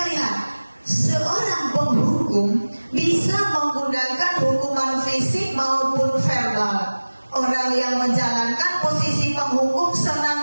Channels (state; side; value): inverted; both; correlation -1.00